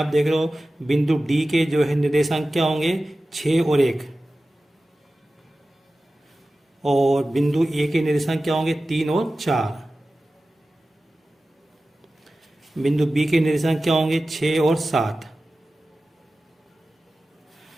देख रहे हो बिंदु डी के जो है निर्देशांक क्या होंगे, 6 और 1, और बिंदु ए के निर्देशांक क्या होंगे 3 और 4। बिंदु बी के निर्देशांक क्या होंगे 6 और 7।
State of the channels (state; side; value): normal; both; correlation 0.95